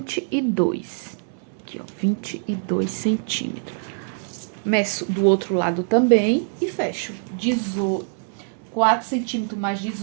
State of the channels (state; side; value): silent; left; 63 dB below the other